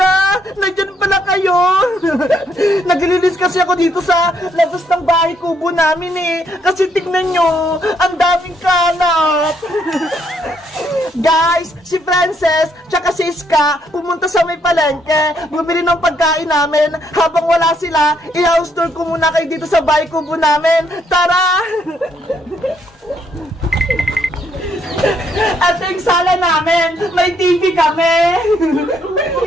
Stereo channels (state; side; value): normal; both; correlation 0.72